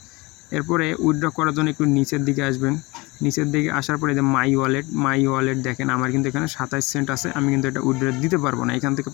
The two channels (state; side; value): quieter; right; 24.0 dB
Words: এরপরে উইথড্র করার জন্য একটু নিচের দিকে আসবেন। নিচের দিকে আসার পরে যে মাই ওয়ালেট দেখেন আমার কিন্তু এখানে 27 সেন্ট আছে। আমি কিন্তু এটা উইথড্র দিতে পারবো না। এখান থেকে